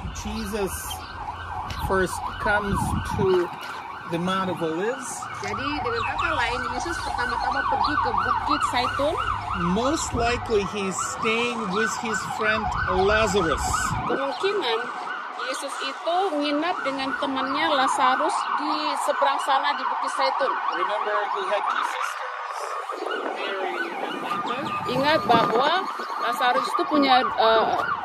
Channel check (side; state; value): both; identical; correlation 1.00